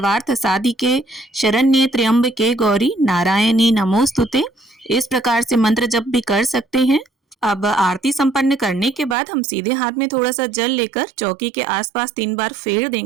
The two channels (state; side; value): drops out; left; at 9.2 s